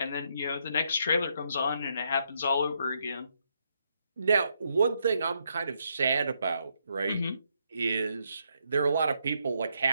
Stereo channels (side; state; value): both; inverted; correlation -0.76